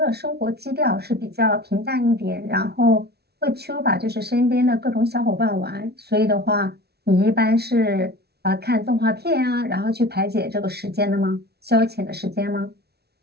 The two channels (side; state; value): left; late; 0.47 ms